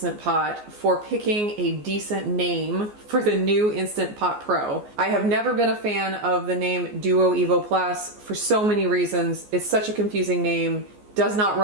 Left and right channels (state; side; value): late; left; 14 ms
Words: Pot for picking a decent name for the new Instant Pot Pro. I have never been a fan of the name Duo Evo Plus for so many reasons. It's such a confusing name, does not